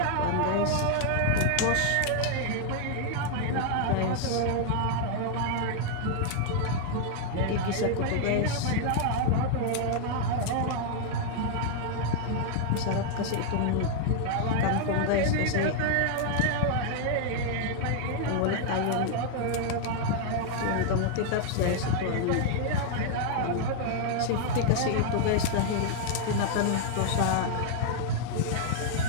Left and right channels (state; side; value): different; both; correlation 0.00